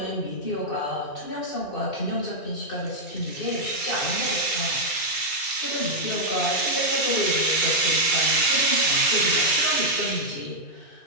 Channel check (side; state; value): right; late; 2.3 ms